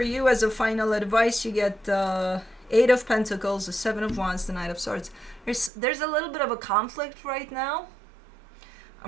you, as a final advice, you get the 8 of Pentacles, the 7 of Wands, the Knight of Swords. There's a little bit of a conflict right now.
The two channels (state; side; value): drops out; left; at 5.7 s